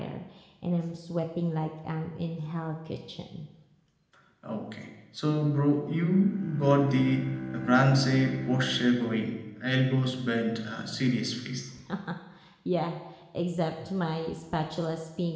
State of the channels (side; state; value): both; identical; correlation 1.00